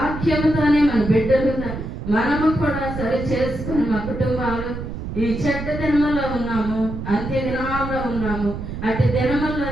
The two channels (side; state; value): right; noise; rumble, 7 dB below the sound